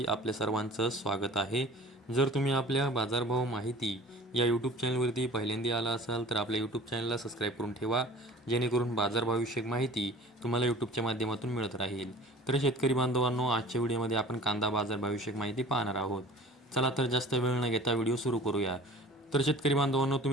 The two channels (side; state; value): both; normal; correlation 0.44